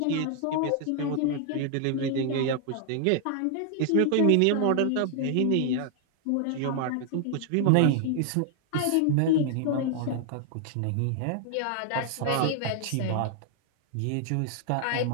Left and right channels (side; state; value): both; different; correlation 0.00